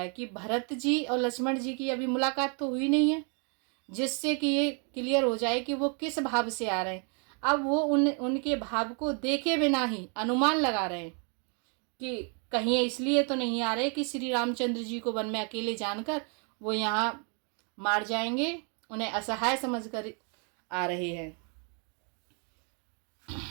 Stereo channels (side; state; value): left; quieter; 38.5 dB